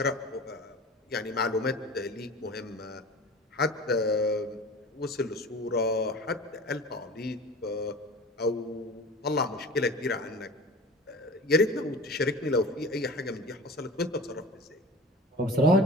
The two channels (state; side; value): normal; both; correlation 0.37